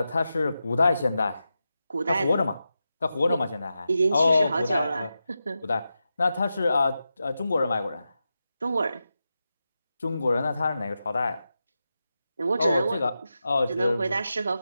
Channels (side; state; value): both; inverted; correlation -0.90